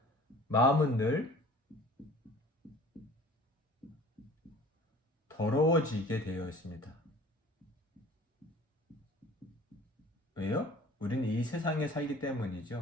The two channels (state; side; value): normal; both; correlation 0.46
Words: 마음은 늘 더러워지게 되어 있습니다. 왜요? 우리는 이 세상에 살기